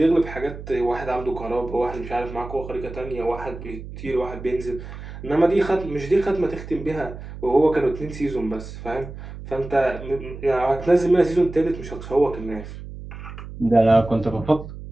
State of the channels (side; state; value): right; noise; hum, 12 dB below the sound